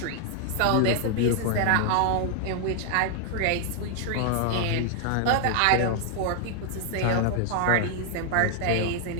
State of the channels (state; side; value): different; both; correlation 0.00